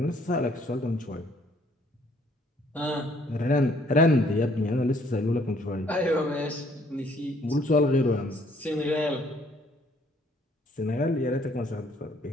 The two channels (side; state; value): both; normal; correlation 0.63